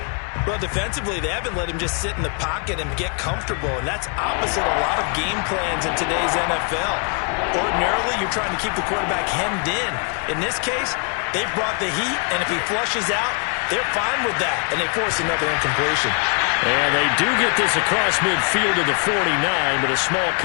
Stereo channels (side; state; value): right; quieter; 38.6 dB